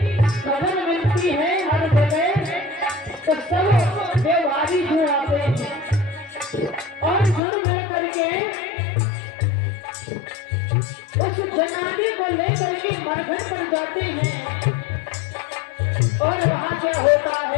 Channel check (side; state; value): right; drops out; at 7.4 s